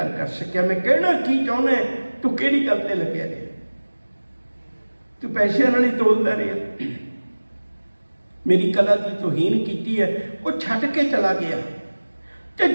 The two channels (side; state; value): both; inverted; correlation -1.00